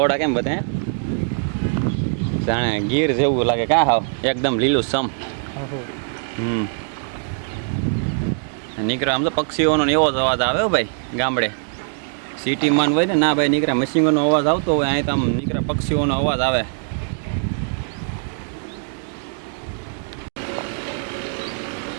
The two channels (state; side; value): silent; left; digital silence